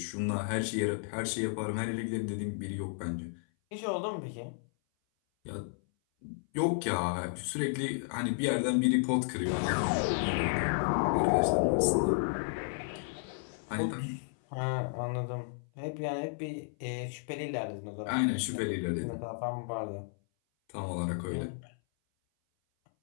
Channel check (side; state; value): right; silent; 56 dB below the other